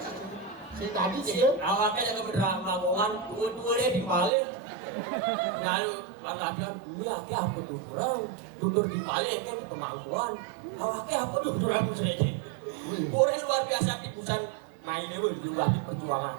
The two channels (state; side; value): drops out; left; at 4.3 s